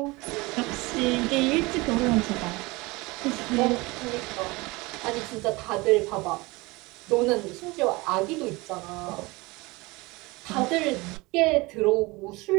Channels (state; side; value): quieter; left; 23.4 dB